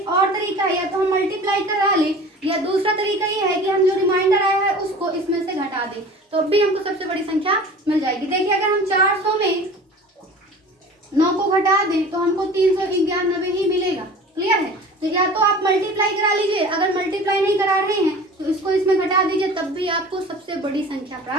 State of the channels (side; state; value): both; normal; correlation 0.40